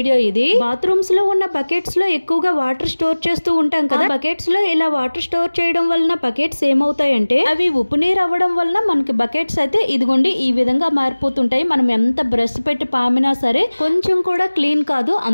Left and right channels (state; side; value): inverted; both; correlation -1.00